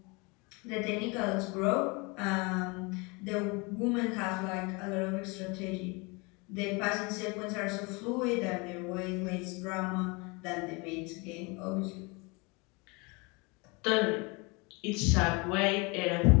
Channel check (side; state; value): right; quieter; 28.1 dB